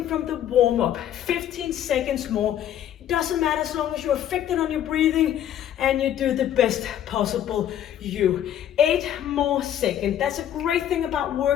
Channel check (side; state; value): right; quieter; 10.8 dB